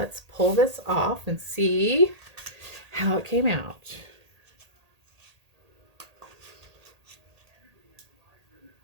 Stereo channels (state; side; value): late; left; 1.8 ms